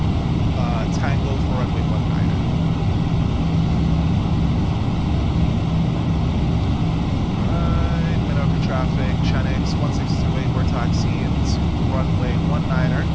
Tango for runway 19. Traffic, Chenix 1628, we're taxiing to runway 19er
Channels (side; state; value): both; identical; correlation 1.00